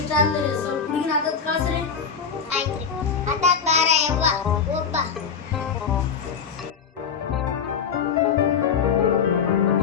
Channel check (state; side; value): quieter; right; 6.5 dB